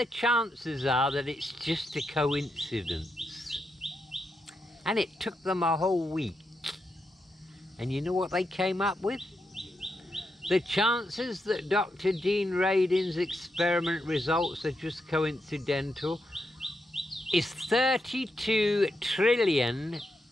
chances are that it's just a coincidence. And it took them a whole week. And you know what they came up with? The chances that Dr. Dean Radin's experiment results are just coincidental is 32 trillion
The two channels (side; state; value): both; normal; correlation 0.84